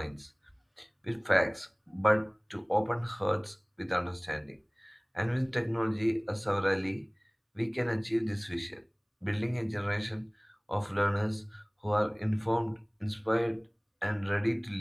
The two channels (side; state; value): both; identical; correlation 1.00